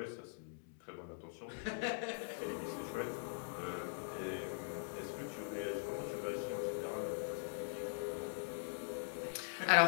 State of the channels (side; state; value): right; silent; digital silence